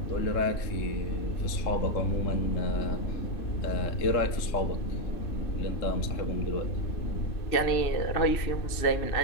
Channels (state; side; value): late; right; 2.7 ms